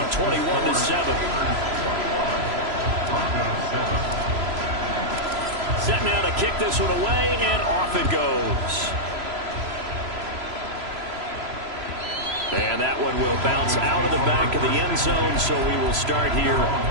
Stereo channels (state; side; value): late; left; 3.0 ms